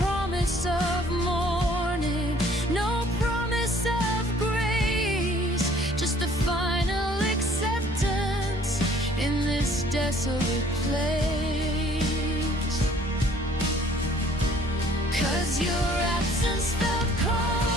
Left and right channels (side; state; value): both; normal; correlation 0.57